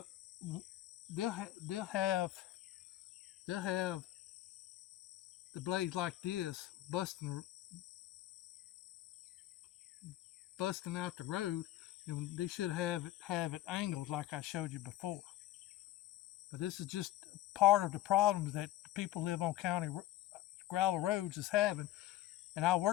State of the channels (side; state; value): right; quieter; 14.5 dB